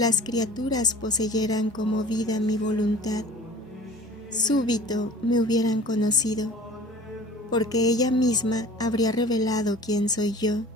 criaturas poseyeran como vida mi voluntad, súbito me hubieran conocido, porque ella misma habría revelado quién soy yo.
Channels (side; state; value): both; normal; correlation 0.45